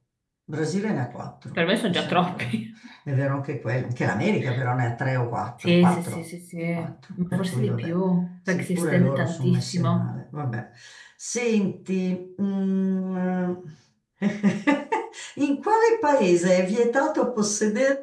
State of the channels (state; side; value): identical; both; correlation 1.00